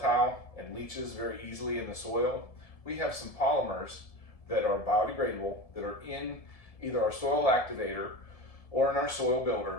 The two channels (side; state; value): right; late; 1.7 ms